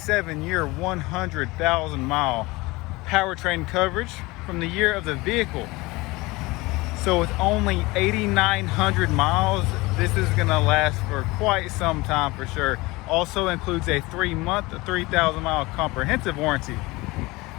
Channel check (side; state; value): right; quieter; 22.1 dB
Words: 100,000 mile powertrain coverage from the year of the vehicle. So with only 8,900 miles, this is gonna last for quite some time for sure. Also includes a 3-month, 3,000 mile comprehensive warranty.